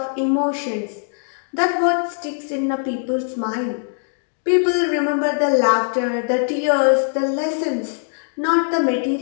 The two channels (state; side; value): silent; right; digital silence